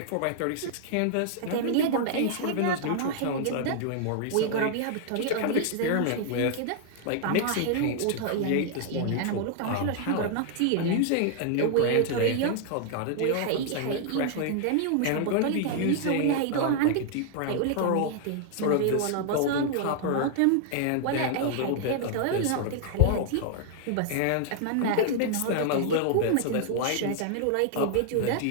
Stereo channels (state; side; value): different; both; correlation 0.00